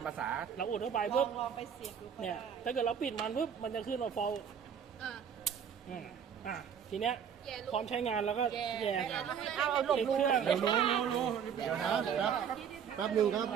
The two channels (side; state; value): left; quieter; 7.8 dB